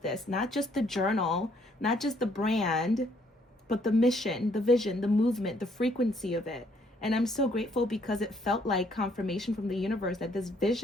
this, not just the journal, not just the brand, but the mission, the vision, the movement, the frequency of it. And I'm so grateful because it felt like confirmation from the universe that this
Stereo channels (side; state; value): both; normal; correlation 0.67